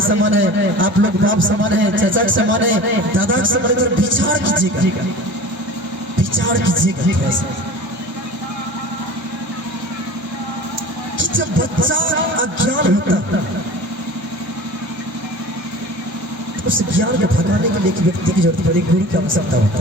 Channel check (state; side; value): late; left; 1.0 ms